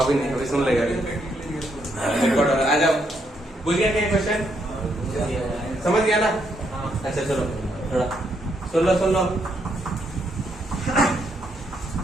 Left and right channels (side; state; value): both; normal; correlation 0.76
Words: नहीं, अभी सुन लेगा रिकॉर्ड। आ जाओ, बुझ गया क्या क्वेश्चन, समझ गया ना। अच्छा चलो थोड़ा सुन लो।